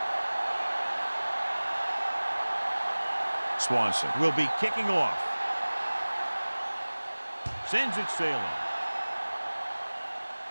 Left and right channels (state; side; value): inverted; both; correlation -1.00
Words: Swanson will be kicking off. Sends it sailing.